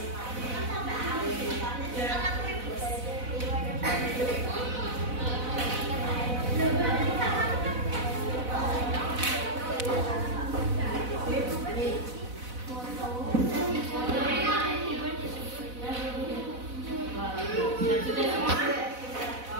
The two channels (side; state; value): left; late; 4.0 ms